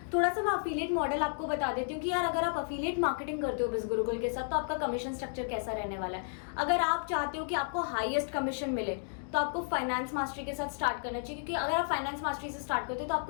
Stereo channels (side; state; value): right; silent; digital silence